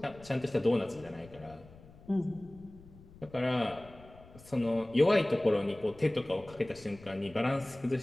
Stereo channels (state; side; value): noise; left; rumble, 21 dB below the sound